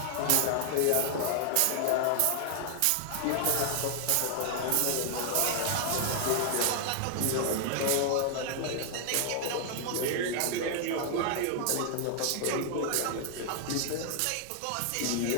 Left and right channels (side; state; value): both; different; correlation 0.00